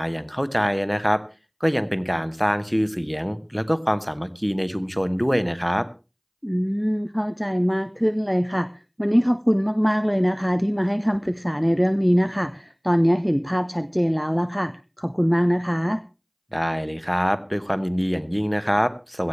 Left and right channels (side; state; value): both; identical; correlation 1.00